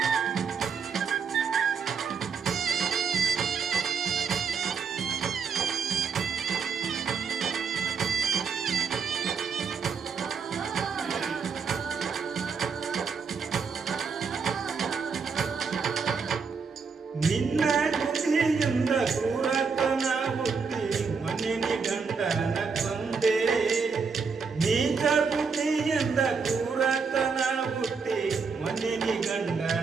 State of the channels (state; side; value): quieter; left; 5.5 dB